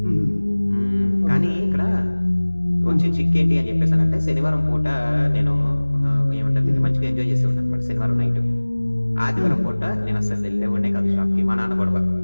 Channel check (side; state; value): both; inverted; correlation -1.00